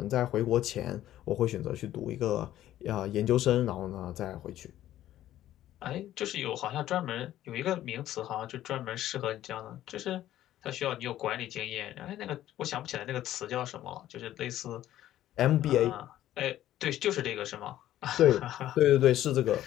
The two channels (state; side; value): quieter; right; 13.1 dB